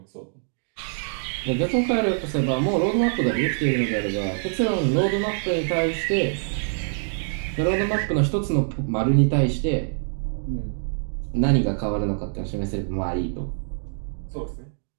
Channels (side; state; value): left; silent; digital silence